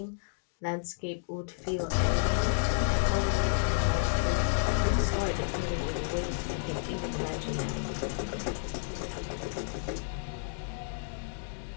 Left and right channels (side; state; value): right; silent; digital silence